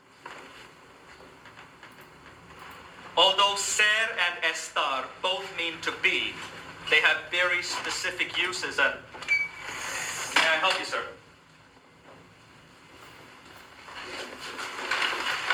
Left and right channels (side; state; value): both; identical; correlation 1.00